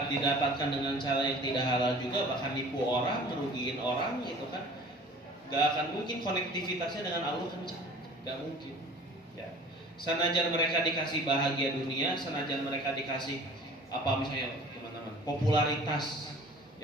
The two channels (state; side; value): normal; both; correlation 0.45